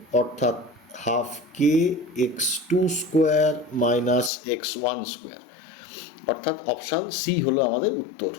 অর্থাৎ হাফ কে x2 square minus x1 square, অর্থাৎ অপশান সি হলো আমাদের উত্তর।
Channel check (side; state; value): right; drops out; at 4.3 s